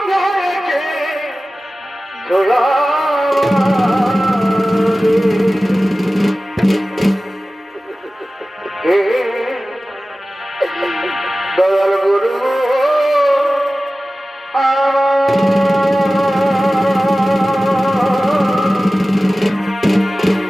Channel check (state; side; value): normal; both; correlation 0.96